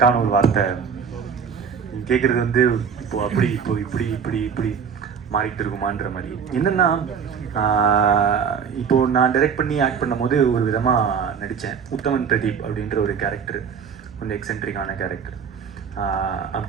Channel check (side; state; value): left; quieter; 6.8 dB